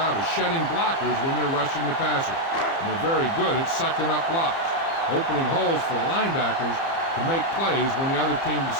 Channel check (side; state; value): right; late; 30 ms